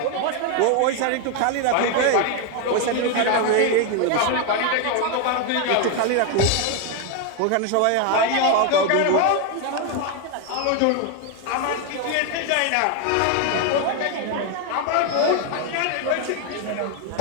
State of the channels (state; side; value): different; both; correlation 0.01